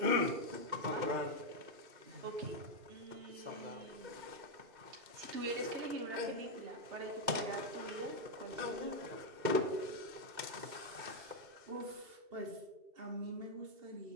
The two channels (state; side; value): late; left; 2.1 ms